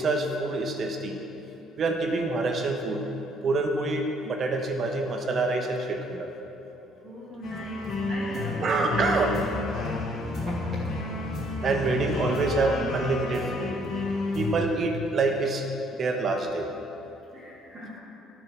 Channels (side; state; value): both; normal; correlation 0.65